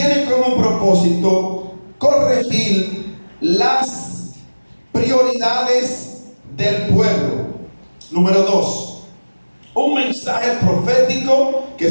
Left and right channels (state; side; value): inverted; both; correlation -1.00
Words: como propósito corregir las prioridades del pueblo. Número 2, un mensaje profético que